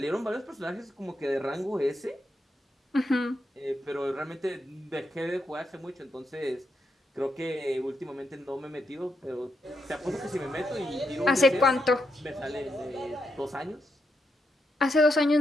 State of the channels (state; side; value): normal; both; correlation 0.82